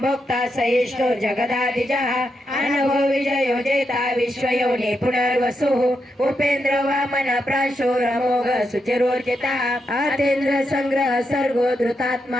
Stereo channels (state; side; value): normal; both; correlation 0.84